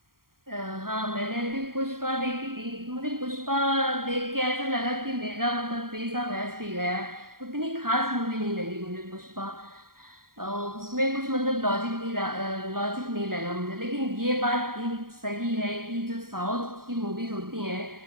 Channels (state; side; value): late; left; 0.92 ms